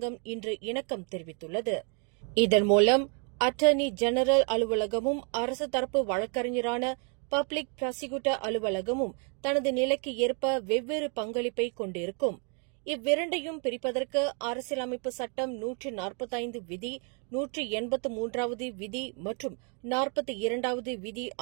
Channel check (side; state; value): left; quieter; 38.8 dB